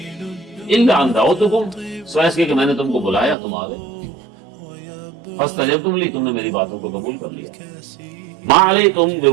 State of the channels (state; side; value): drops out; left; at 3.4 s